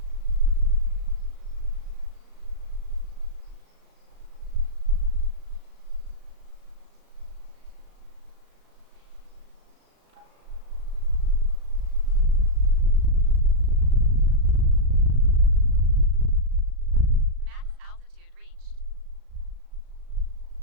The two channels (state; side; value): late; left; 37 ms